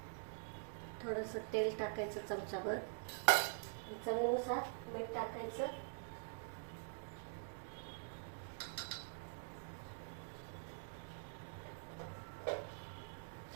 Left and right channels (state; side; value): silent; left; digital silence